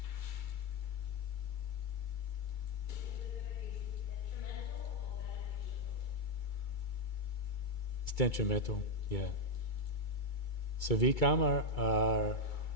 It's detrimental, yeah. So vikarma are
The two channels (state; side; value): late; right; 2.3 ms